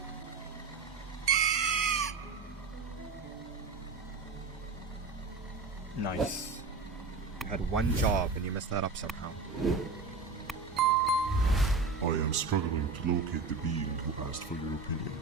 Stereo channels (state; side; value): quieter; left; 4.3 dB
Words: Nice. had one job and you messed that up somehow. I am struggling to locate the being who asked for your opinion.